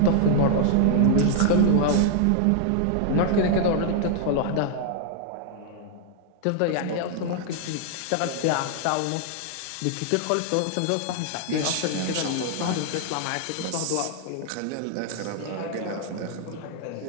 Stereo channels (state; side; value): different; both; correlation 0.00